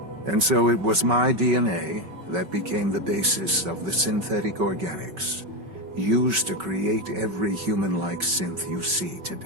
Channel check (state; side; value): late; left; 5.3 ms